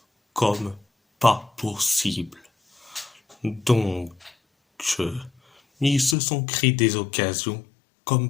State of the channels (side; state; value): right; drops out; at 6.2 s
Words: comme pas possible. Donc, ils se sont créés des occasions